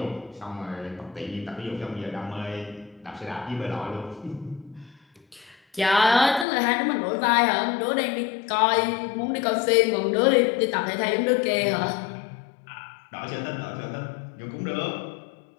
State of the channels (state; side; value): drops out; right; at 6.5 s